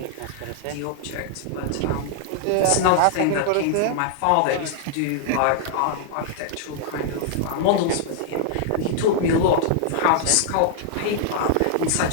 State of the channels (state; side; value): different; both; correlation -0.01